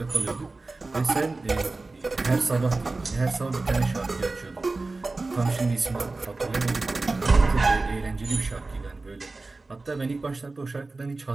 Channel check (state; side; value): quieter; left; 3.4 dB